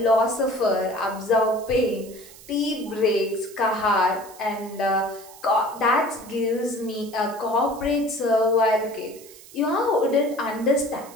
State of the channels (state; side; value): noise; right; hiss, 20 dB below the sound